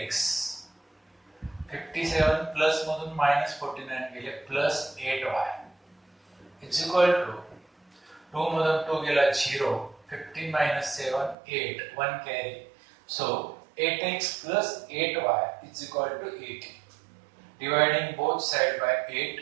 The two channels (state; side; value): drops out; left; at 11.4 s